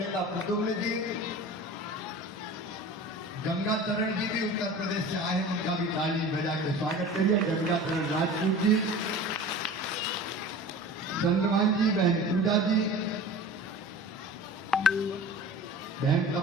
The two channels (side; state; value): both; normal; correlation 0.38